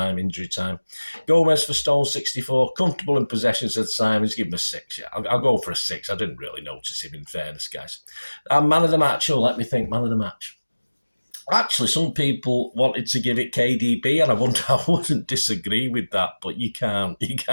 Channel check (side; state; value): both; inverted; correlation -1.00